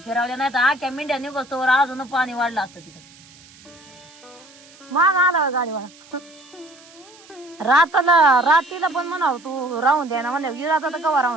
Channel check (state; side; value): noise; right; hiss, 24 dB below the sound